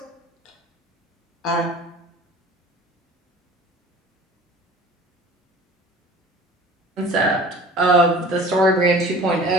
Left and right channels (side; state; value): both; normal; correlation 0.44